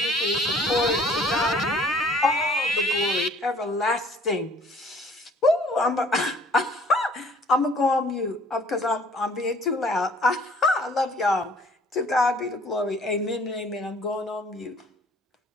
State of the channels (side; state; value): both; normal; correlation 0.55